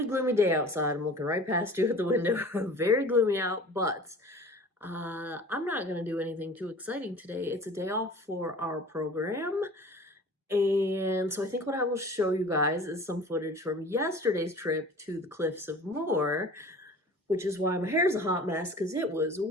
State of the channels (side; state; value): both; normal; correlation 0.43